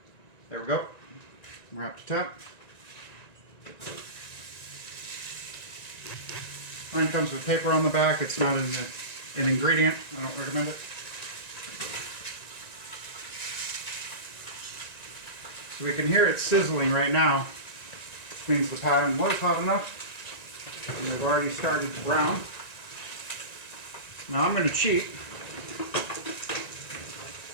There we go. We're up to temp. Mine comes with paper on the back. It's not an ingredient. I don't recommend it. So we can hear it sizzling right now, which means the pan was hot enough. And they've already started to brown. Now I'm going to cheat.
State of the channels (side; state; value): right; late; 1.9 ms